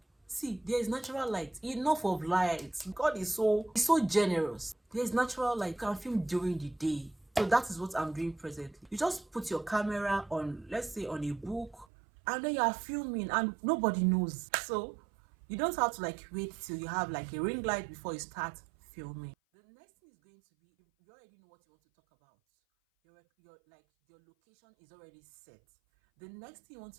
see, there is natural light, enough of light. God is so generous. There's natural light. You can film during the day. So that is what I'm doing presently. You just put your camera on, let's say on a book, and then you are filming and nobody knows. So you don't have to like wait till you have like a ring light before you start filming. The next thing is going to be, you already know what you want to talk about. Your location is already set. The next thing you want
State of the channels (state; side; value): drops out; left; at 11.9 s